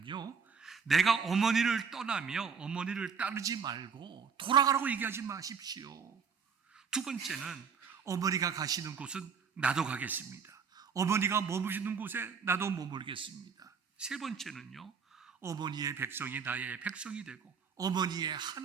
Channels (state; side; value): quieter; left; 6.1 dB